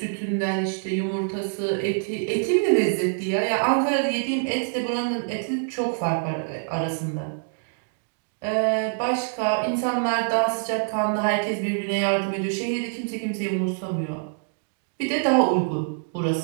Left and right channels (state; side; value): silent; left; digital silence